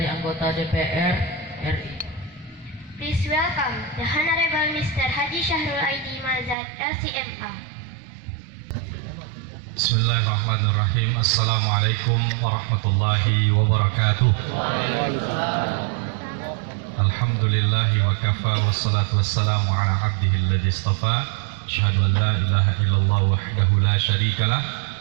anggota DPR RI. Please welcome the Honorable Mr. Haji Syahrul Aidi Mazad LCMA. Bismillahirrahmanirrahim. Assalamualaikum warahmatullahi wabarakatuh. Alhamdulillahi wa kafa, wassalatu wassalamu ala abdihi alladhi istafa. Asyhadu an la ilaha illallah wahdahu la syarikalah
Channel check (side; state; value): left; drops out; at 6.6 s